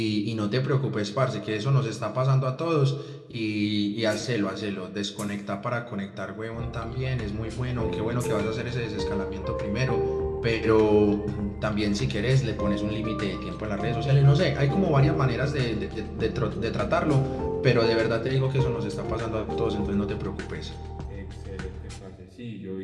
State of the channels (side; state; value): both; identical; correlation 1.00